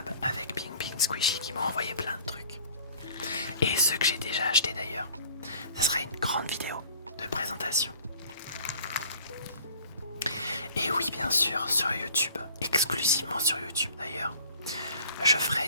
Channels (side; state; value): both; inverted; correlation -0.50